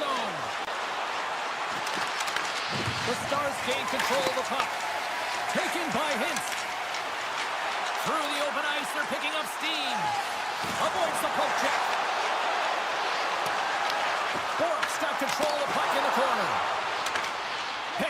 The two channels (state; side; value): identical; both; correlation 1.00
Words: The Stars gain control of the puck. Taken by Hintz. Through the open ice, they're picking up steam. Avoids the poke check. Bork's got control of the puck in the corner.